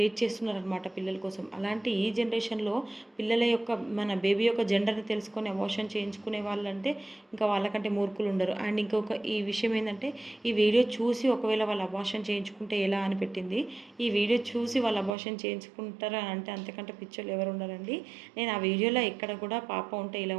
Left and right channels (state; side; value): drops out; left; at 15.2 s